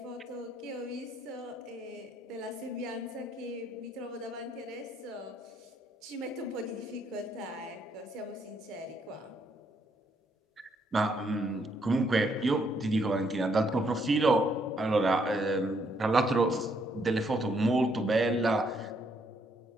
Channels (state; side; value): normal; both; correlation 0.72